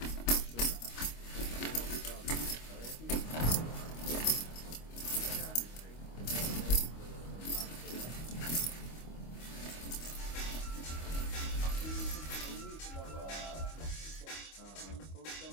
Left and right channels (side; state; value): right; late; 25 ms